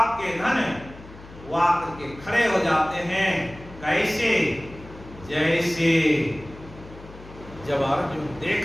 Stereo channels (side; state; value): left; noise; hum, 18 dB below the sound